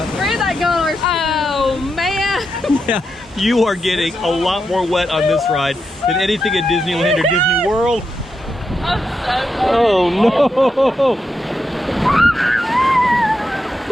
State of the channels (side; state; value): both; normal; correlation 0.85